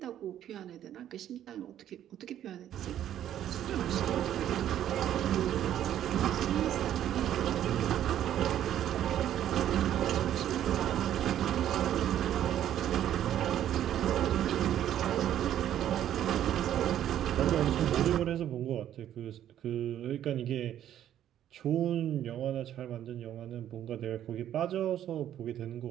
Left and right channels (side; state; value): left; quieter; 11.1 dB